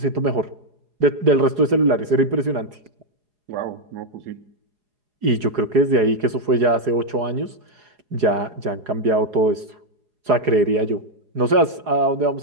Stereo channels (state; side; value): late; left; 4.8 ms